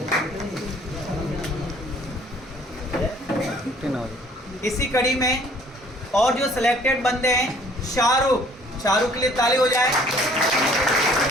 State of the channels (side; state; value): both; normal; correlation 0.57